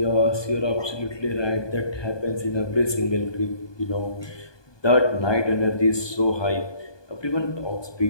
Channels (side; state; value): right; late; 1.2 ms